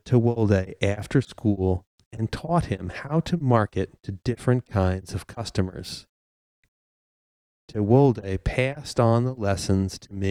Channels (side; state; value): both; identical; correlation 1.00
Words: Tewolde after school and taught him how to market to different kinds of customers. Tewolde passed on the lessons to